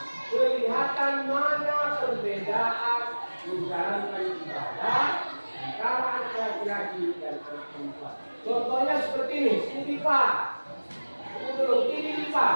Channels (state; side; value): inverted; both; correlation -1.00